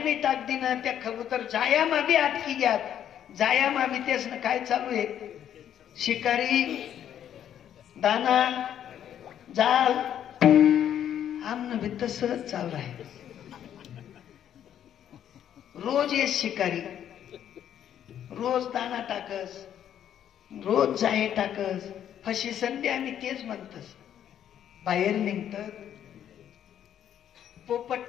टाक दी ना. त्या कबूतर जाया मा बी आत की ग्यात, जाया मा बी. तेच ना काय चालू आहे? शिकारी दाना जाल आमनं भी तसंच चालू आहे. रोज ये शिकारी, रोज दाना टाकस, रोज जाहे टाकस, फशी संधी आम्ही तेच म्हणतस. बाहेर निघतात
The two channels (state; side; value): quieter; right; 10.0 dB